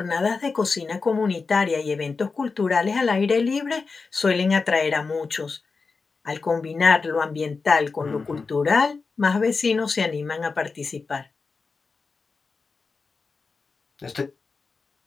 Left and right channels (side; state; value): right; quieter; 4.5 dB